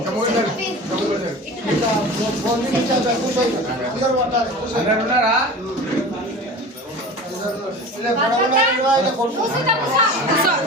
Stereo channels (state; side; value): normal; both; correlation 0.35